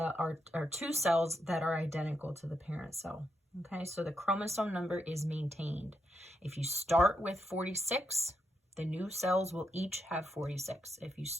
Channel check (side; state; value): both; normal; correlation 0.81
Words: are 2 cells that are identical to the parent cell. Okay, so the chromosome number is maintained. If you start with 46, the new cells will each have 46. If you